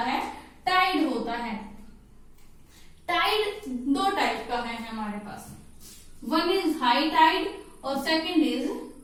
है, टाइड होता है। टाइड 2 टाइप का है हमारे पास, वन इज हाई टाइड और सेकंड इज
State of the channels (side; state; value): both; identical; correlation 1.00